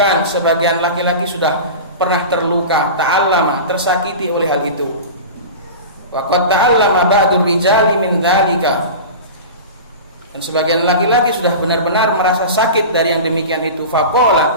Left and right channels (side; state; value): both; inverted; correlation -0.31